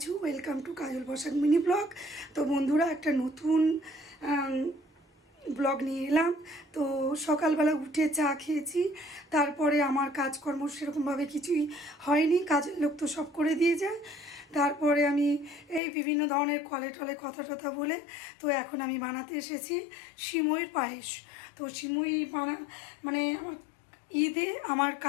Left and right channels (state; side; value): drops out; right; at 15.8 s